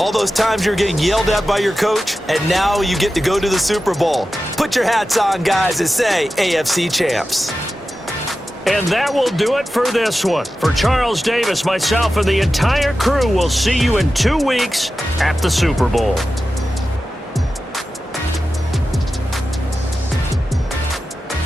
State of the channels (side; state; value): both; normal; correlation 0.93